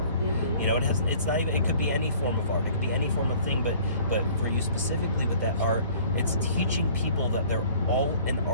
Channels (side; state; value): both; inverted; correlation -0.52